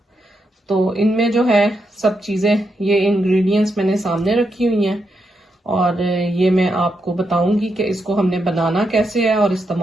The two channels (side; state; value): both; normal; correlation 0.82